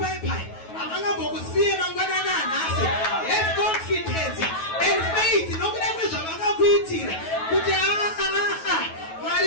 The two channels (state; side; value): late; right; 9.3 ms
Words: havangambokusiye mangwanani anhasi. Have confidence and faith nokuda kwezvavakakuitira kuti